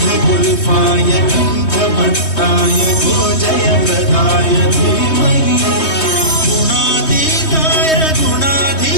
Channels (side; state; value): right; late; 3.2 ms